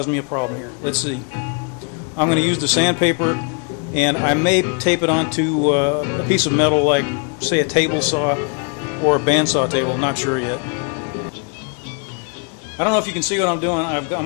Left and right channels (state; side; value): quieter; right; 39.0 dB